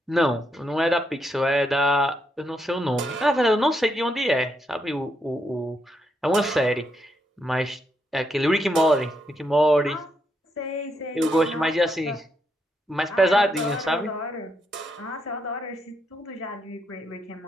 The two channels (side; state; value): both; normal; correlation 0.79